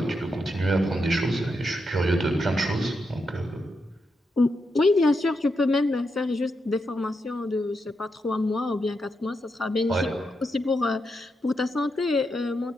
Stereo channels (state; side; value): normal; both; correlation 0.84